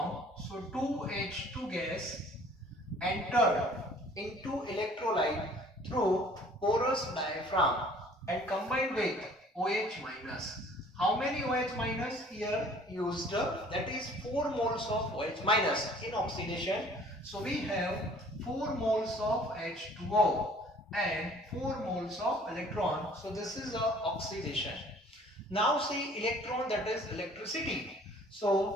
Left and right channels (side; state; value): both; normal; correlation 0.53